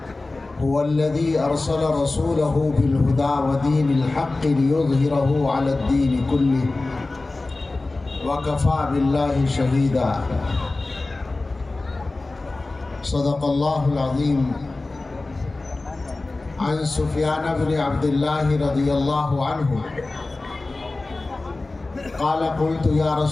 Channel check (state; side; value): quieter; right; 3.2 dB